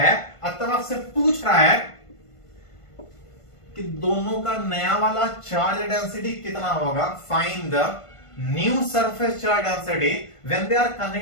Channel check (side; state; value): right; late; 1.5 ms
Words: अतः आपसे पूछ रहा है कि दोनों का नया वाला चार्ज डेंसिटी कितना होगा। Find the new surface charge density when they are